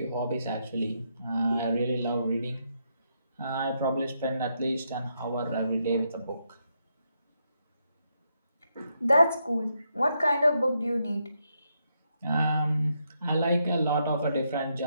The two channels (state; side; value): inverted; both; correlation -0.80